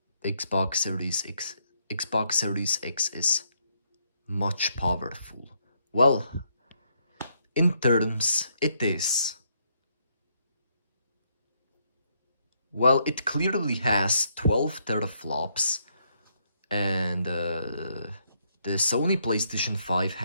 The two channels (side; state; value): both; inverted; correlation -0.74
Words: Xbox Series X is much powerful. Well, in terms, it is. Well, it clearly has 12 teraflops, and the Sony PlayStation 5